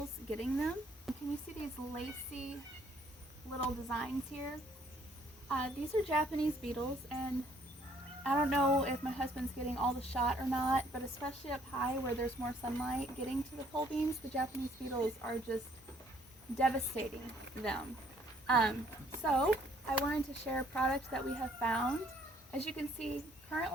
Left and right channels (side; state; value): both; normal; correlation 0.63